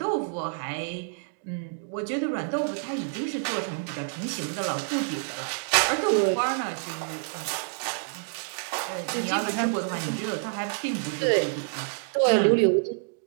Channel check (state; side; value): silent; left; digital silence